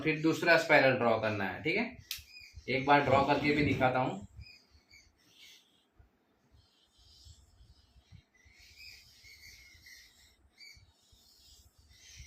फिर दूसरा स्पाइरल ड्रॉ करना है, ठीक है। एक बार ड्रॉ करके भी दिखाता हूँ।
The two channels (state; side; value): identical; both; correlation 1.00